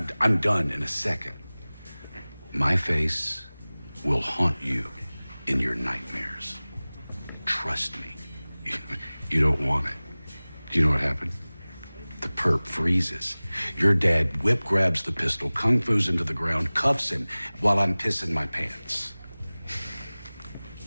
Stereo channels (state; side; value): inverted; both; correlation -0.99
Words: done in a second. My face will haunt you in your nightmares. Trust me, you don't want it. Do you know what happened? The perp freezes. Your dad whip grabs the pistol, kung fu's into the ground, cuffs him while I'm pissing my pants.